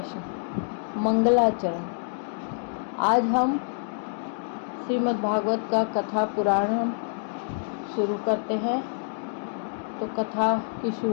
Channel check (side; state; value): right; silent; digital silence